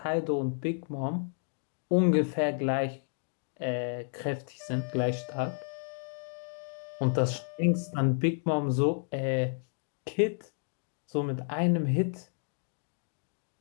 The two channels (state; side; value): silent; right; digital silence